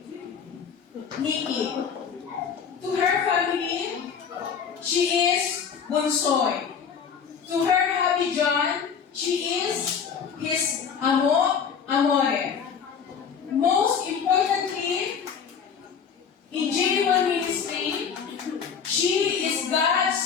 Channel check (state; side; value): quieter; right; 6.8 dB